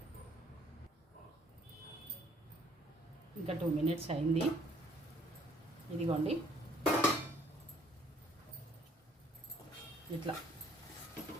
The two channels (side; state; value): both; normal; correlation 0.63